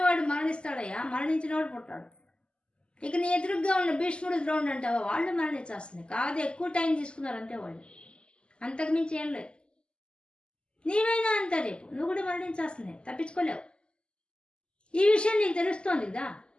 మరణిస్తాడయ్యా, మరణించినవాడు పుట్టాడు. ఇక నీ ఎదురుగ్గా ఉన్న భీష్ముడు, ద్రోణుడు అంటావా, వాళ్ళు మరణించాల్సిందే. కాదు, ఎక్కువ టైం తీసుకున్నారు అంతే వాళ్ళు, అంతకు మించి ఏం లేదు. నీవైనా అంతా రేపు నువ్వు కూడా మరణించాల్సిందే, తప్పించుకోలేవు. ఈ విషయం నీకు తెలుస్తోంది కదా,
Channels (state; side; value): late; right; 0.051 ms